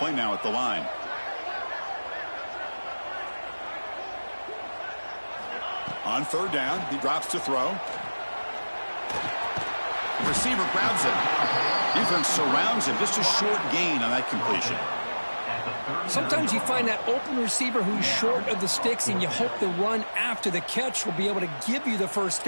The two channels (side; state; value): both; inverted; correlation -1.00